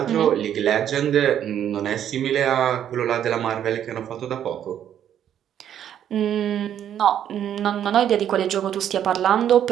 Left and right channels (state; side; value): quieter; left; 10.0 dB